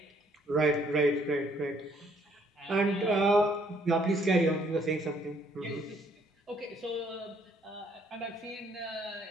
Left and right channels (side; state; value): both; normal; correlation 0.65